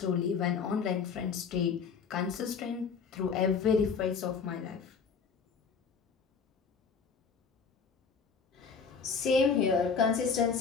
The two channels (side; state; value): right; quieter; 5.7 dB